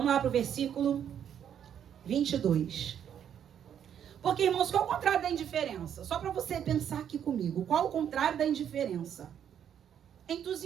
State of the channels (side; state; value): left; quieter; 9.1 dB